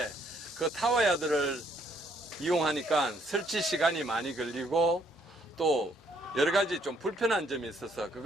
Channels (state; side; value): normal; both; correlation 0.68